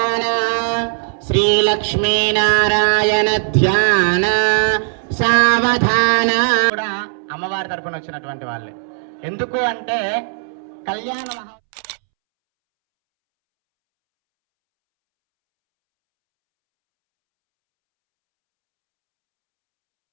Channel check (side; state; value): left; silent; 68 dB below the other